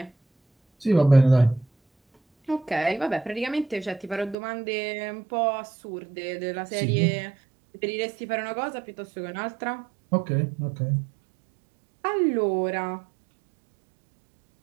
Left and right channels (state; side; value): drops out; left; at 4.4 s